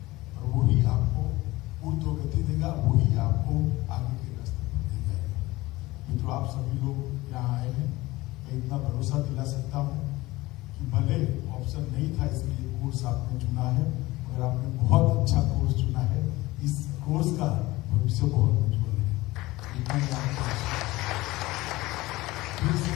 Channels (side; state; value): right; quieter; 19.4 dB